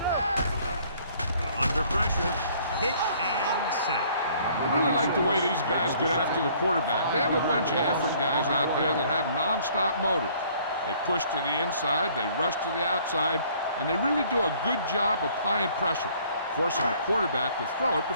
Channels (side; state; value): both; inverted; correlation -0.58